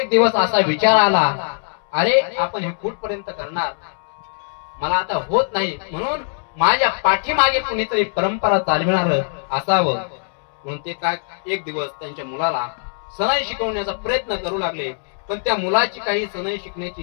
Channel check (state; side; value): silent; right; 65 dB below the other